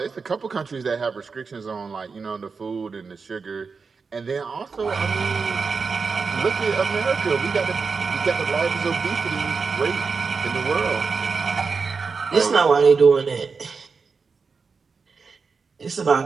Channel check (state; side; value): quieter; left; 5.0 dB